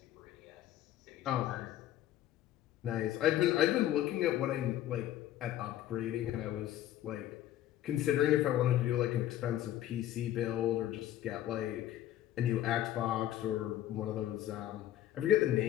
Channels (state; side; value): quieter; right; 12.6 dB